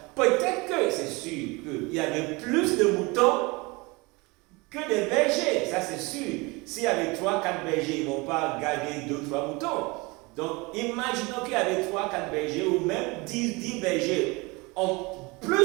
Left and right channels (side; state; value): left; quieter; 25.4 dB